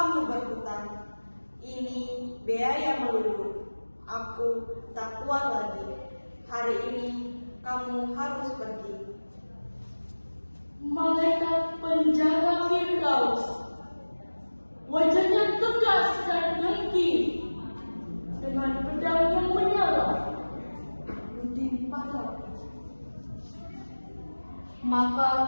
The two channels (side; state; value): both; inverted; correlation -1.00